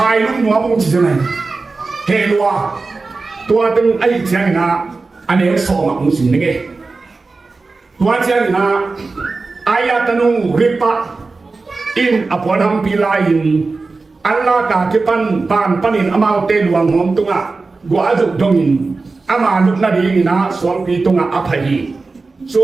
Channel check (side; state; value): left; quieter; 3.9 dB